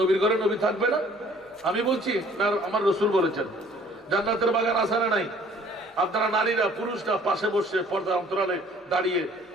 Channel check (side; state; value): both; normal; correlation 0.56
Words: ঘরে নবী থাকবে না? আমি বলছি না, আমার রাসূল বলেছেন জান্নাতের বাগান আছে না নাই? আপনারা নারীরা পুরুষরা পাশে বসে পর্দা অন্তরালে দাঁড়িয়ে